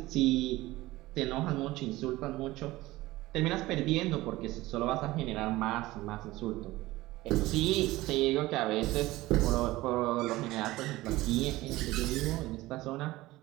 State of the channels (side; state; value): left; quieter; 18.3 dB